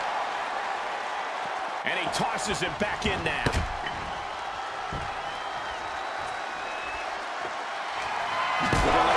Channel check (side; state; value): both; identical; correlation 1.00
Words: And he tosses him back in now.